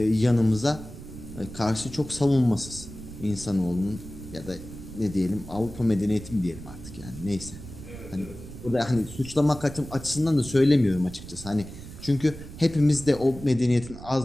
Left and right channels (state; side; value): noise; right; rumble, 14 dB below the sound